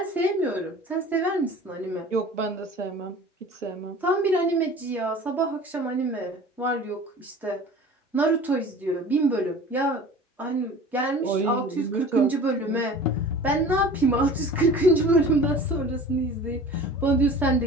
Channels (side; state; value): both; normal; correlation 0.42